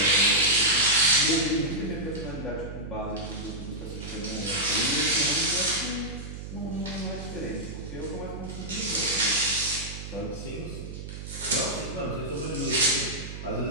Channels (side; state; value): right; noise; hum, 9 dB below the sound